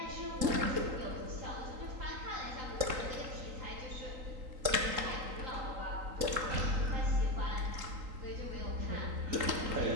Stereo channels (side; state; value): left; late; 3.7 ms